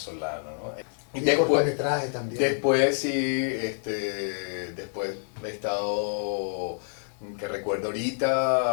¿no? Y Y cortometraje también. después sí, después he estado, que recuerdo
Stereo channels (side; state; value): right; silent; 60 dB below the other